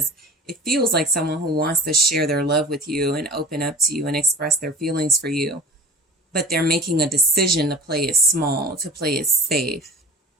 it feels like someone who wants to share their love with you and open up to you and express their feelings for you. But they're making a decision to play it small, to play it safe,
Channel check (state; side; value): normal; both; correlation 0.36